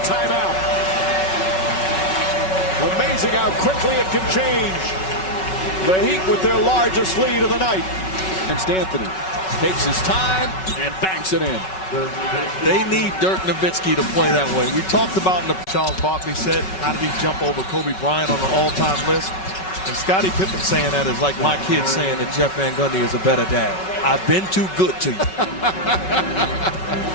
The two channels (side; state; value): right; late; 5.3 ms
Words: timeout. Amazing how quickly it can change. The Heat with their largest lead of the night. And Anthony takes his time and banks it in. They need Dirk Nowitzki to play that way. We talked about in the Charles Barkley said, how did he jump over Kobe Bryant on the all-time list? And Scottie Pippen saying that is like my kid saying that Jeff Van Gundy is a better dad. I've been too good to you.